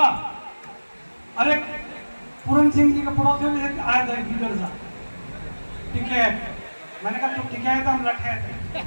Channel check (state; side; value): inverted; both; correlation -1.00